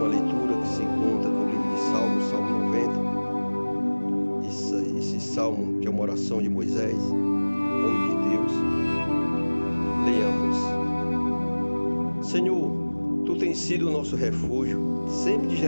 leitura que se encontra no livro de Salmos, Salmo 90. Esse salmo que é uma oração de Moisés, homem de Deus. Leamos. Senhor, Tu tens sido o nosso refúgio, sempre de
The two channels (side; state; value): both; inverted; correlation -1.00